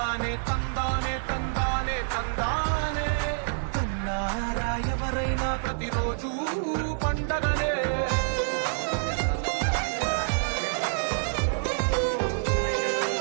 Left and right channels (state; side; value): silent; left; 60 dB below the other